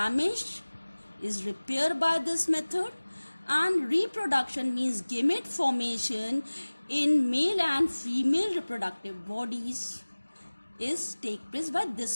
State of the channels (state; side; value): inverted; both; correlation -1.00